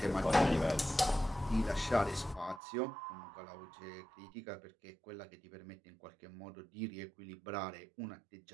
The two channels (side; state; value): left; drops out; at 2.6 s